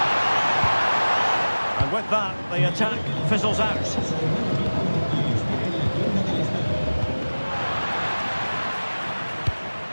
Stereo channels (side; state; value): both; inverted; correlation -1.00